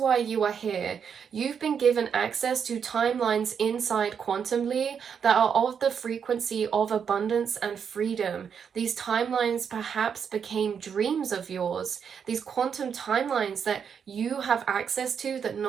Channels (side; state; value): left; quieter; 7.1 dB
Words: you are here. You've been given access to timelines inside Quantumly that are of the frequency of abundance and freedom. These timelines perhaps became dreams of yours. These quantum timelines that you have access to, that